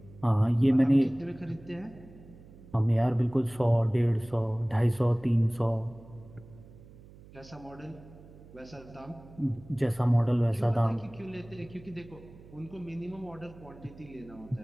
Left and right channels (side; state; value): right; noise; hum, 21 dB below the sound